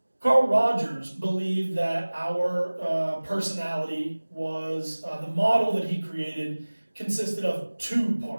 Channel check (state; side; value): inverted; both; correlation -1.00